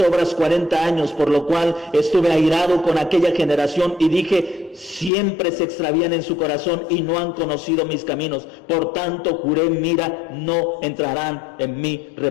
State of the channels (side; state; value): right; drops out; at 5.1 s